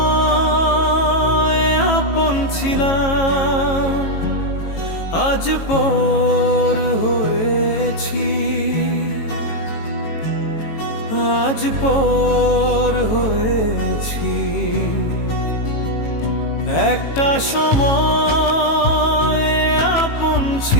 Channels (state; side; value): late; right; 18 ms